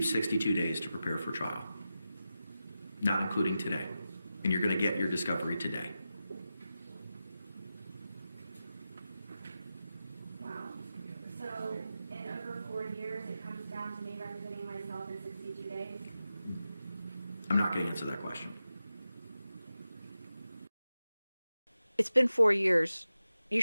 62 days to prepare for trial, not including today. And you're going to get your discovery today. Wow. So in over 4 years, it comes down to me representing myself in 62 days? I'm not going to answer that question. It's been 4 years. You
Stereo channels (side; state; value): both; inverted; correlation -0.92